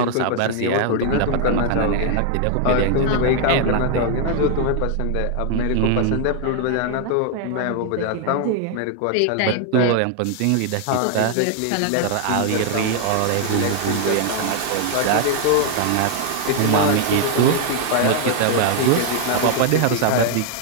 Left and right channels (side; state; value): both; different; correlation 0.00